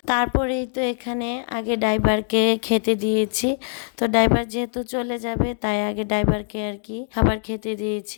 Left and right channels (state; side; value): silent; right; digital silence